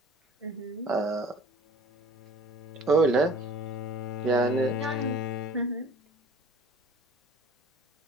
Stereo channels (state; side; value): normal; both; correlation 0.46